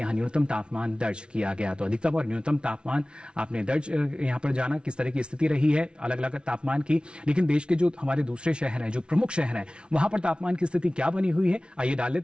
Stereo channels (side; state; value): left; late; 0.057 ms